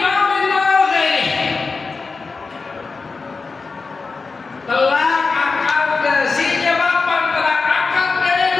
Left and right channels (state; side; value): quieter; right; 4.3 dB